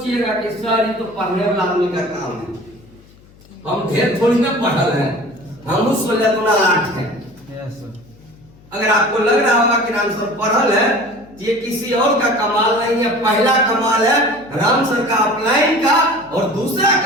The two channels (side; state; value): left; noise; hum, 26 dB below the sound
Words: कि सर ये तो पढ़ने वाला आदमी का काम है। हम ढेर थोड़ी ना पढ़ल हैं, हम 16-8 हैं। अगर आपको लग रहा होगा कि राम सर पढ़ल है, तो ये किसी और का कमाल नहीं है। पहला कमाल है राम सर का अपलाइन का, और दूसरा